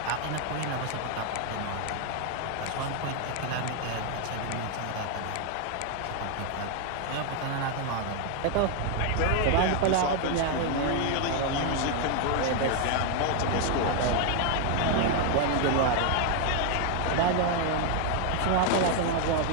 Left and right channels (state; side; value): different; both; correlation 0.00